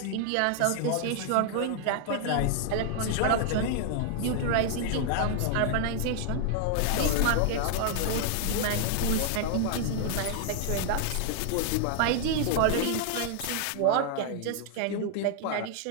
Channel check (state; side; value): different; both; correlation 0.00